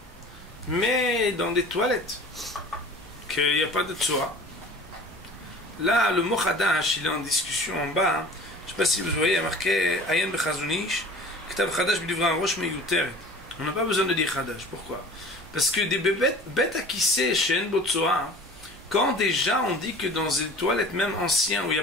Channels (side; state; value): both; normal; correlation 0.43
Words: Mais dans des toilettes qu'il n'y a pas de tsoa. Là, le mot chadash, il est en discussion en bas. Hein. Je ne sais pas si vous voyez, il y a marqué Ayen bechazunish, ktav chadash b'divra rosh meyuteret. On n'a pas besoin de dire chadash. Pourquoi? Parce que des bêtes à qui c'est chez En Botsoa, quand déjà on dit que dans des toilettes même anciennes où il n'y a